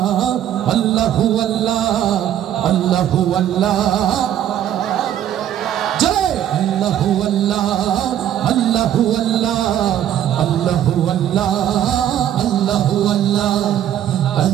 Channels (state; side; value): quieter; left; 10.9 dB